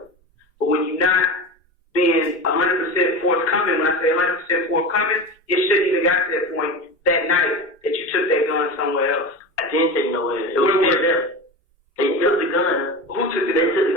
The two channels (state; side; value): normal; both; correlation 0.26